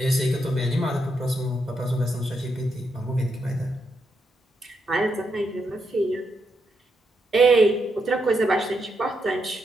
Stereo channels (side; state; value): both; normal; correlation 0.81